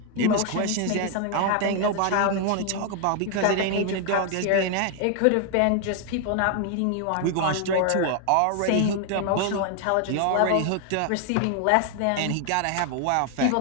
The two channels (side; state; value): both; different; correlation 0.00